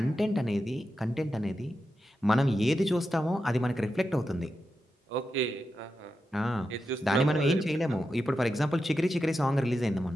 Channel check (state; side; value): normal; both; correlation 0.89